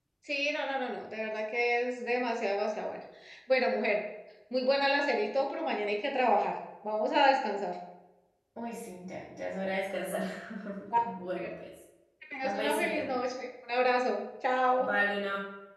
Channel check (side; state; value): both; identical; correlation 1.00